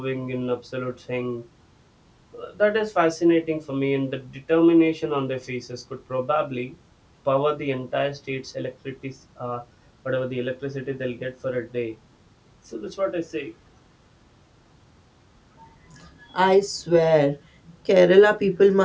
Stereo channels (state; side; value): identical; both; correlation 1.00